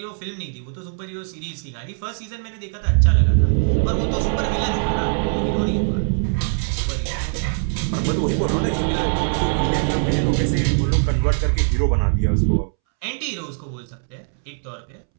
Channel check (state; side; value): silent; left; 65 dB below the other